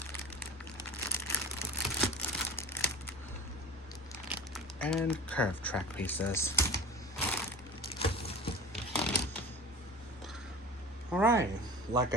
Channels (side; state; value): both; normal; correlation 0.36